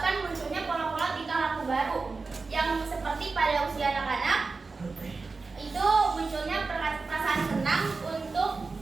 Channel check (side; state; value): left; quieter; 4.1 dB